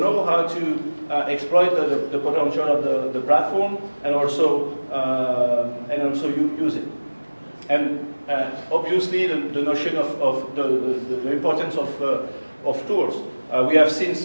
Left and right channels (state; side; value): inverted; both; correlation -1.00